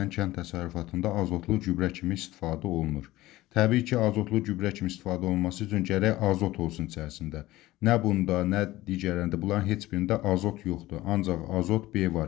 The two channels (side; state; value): right; quieter; 17.2 dB